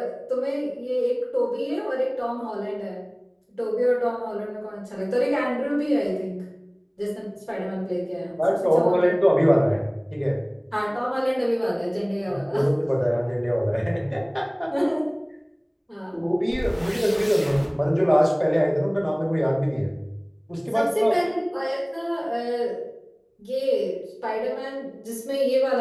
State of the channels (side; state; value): both; identical; correlation 1.00